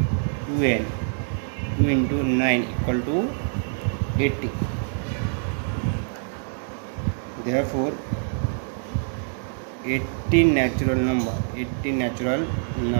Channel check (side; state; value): left; silent; digital silence